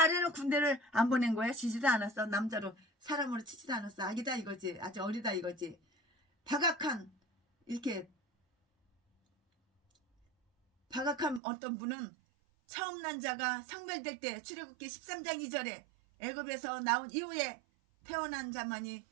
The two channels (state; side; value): drops out; left; at 11.4 s